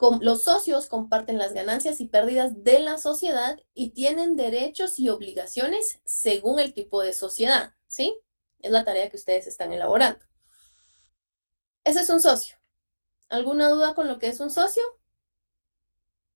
Los socios comparten las ganancias y pérdidas de la sociedad y tienen derechos y obligaciones según el tipo de sociedad, ¿sí? Es la tarea que ustedes están elaborando. Ese es un socio. ¿Alguna duda con lo que es un socio?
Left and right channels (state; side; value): inverted; both; correlation -1.00